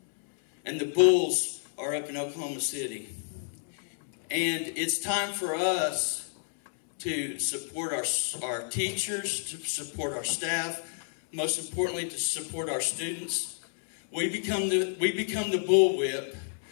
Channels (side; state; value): right; silent; 58 dB below the other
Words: And the bulls are up in Oklahoma City. And it's time for us to support our teachers, to support our staff, most importantly, to support our students. We become the bullwhip,